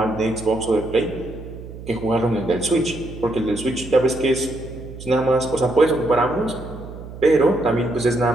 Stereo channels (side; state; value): right; noise; hum, 13 dB below the sound